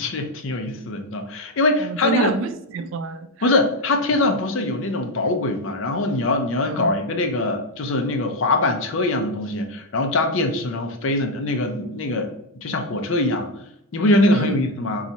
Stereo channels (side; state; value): both; normal; correlation 0.06